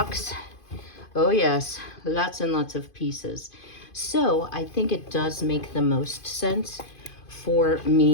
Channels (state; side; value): late; right; 2.5 ms